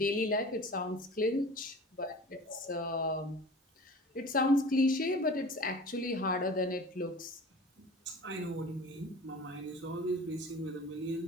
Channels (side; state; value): both; normal; correlation 0.40